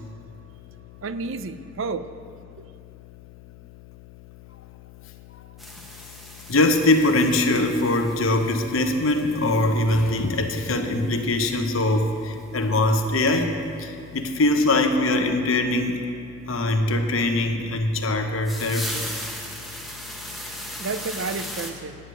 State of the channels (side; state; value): left; noise; hum, 21 dB below the sound